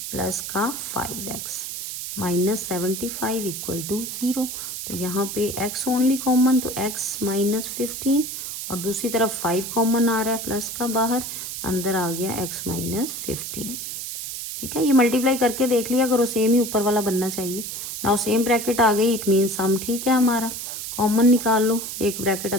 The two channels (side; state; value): right; noise; hiss, 6 dB below the sound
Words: प्लस का 5x माइनस 75 इक्वल टू 0। तो यहाँ पे x ओनली कॉमन, तो x माइनस 15 और दूसरी तरफ 5 कॉमन आ रहा है प्लस का बाहर, अंदर आ गया x माइनस 15। ठीक है, ये मल्टीप्लाई करके देख लिया करो, सेम ही ऊपर वाला बनना चाहिए। नाउ सेम ब्रैकेट आ गई, इट मीन सम ठीक है हमारा, कॉमन निकाल लो। एक ब्रैकेट